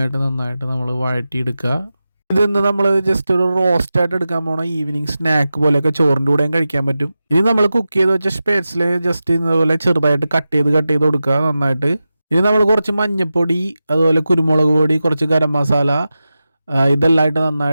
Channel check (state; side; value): inverted; both; correlation -0.93